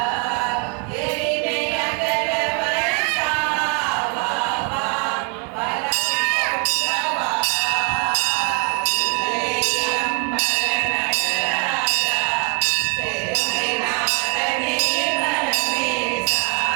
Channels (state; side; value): quieter; left; 36.4 dB